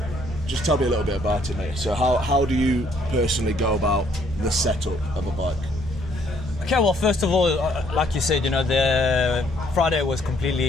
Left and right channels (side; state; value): both; normal; correlation 0.66